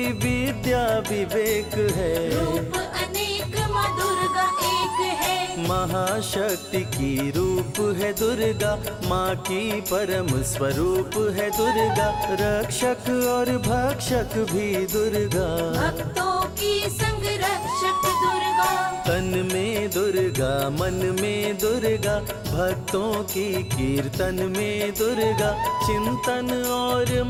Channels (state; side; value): identical; both; correlation 1.00